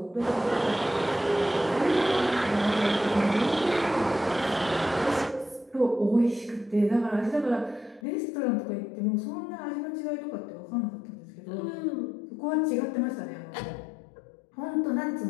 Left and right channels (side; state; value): right; drops out; at 8.0 s